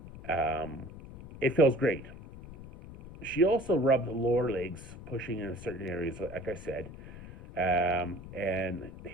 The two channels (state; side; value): noise; left; rumble, 15 dB below the sound